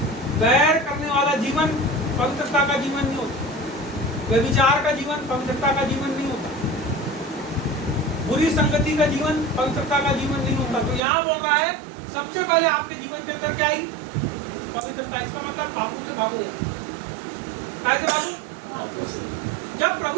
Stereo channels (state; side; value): drops out; left; at 11.0 s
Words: वैर करने वाला जीवन पवित्रता का जीवन नहीं होता। व्यभिचार का जीवन पवित्रता का जीवन नहीं होता। बुरी संगति का जीवन पवित्रता का जीवन नहीं होता। तो यहाँ बोल रहा है सबसे पहले आपके जीवन के अंदर क्या आई? पवित्रता। इसका मतलब पापों से भागो। कैसे भागो? जब